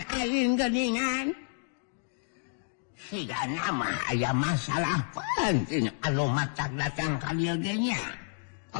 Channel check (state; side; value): silent; right; digital silence